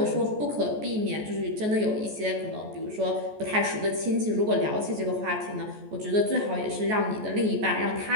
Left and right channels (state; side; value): late; left; 14 ms